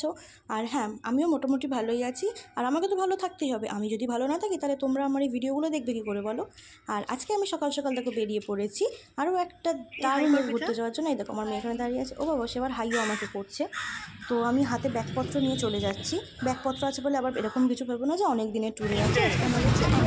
আর হ্যাঁ, আমিও মোটামুটি ভালোই আছি। আর আমাকে তো ভালো থাকতেই হবে। আমি যদি ভালো না থাকি তাহলে তোমরা আমার এই ভিডিওগুলো দেখবে কী করে বলো? আর আজকে আমি সকাল সকাল দেখো বেরিয়ে পড়েছি আরও একটা দারুণ ঘুরতে যাওয়ার জন্য। এই দেখো আমার মেয়ে এখানে দাঁড়িয়ে আছে। ও বাবা, সে আবার হাইও আমাকে করছে। তো আমি হাতে ব্যাগপত্র নিয়ে চলে যাচ্ছি। ব্যাগপত্র আছে বলে আবার এরকম কিছু ভেবো না যে অনেক দিনের ট্যুরে আছে। আজকে আমরা যাচ্ছি 8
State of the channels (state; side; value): identical; both; correlation 1.00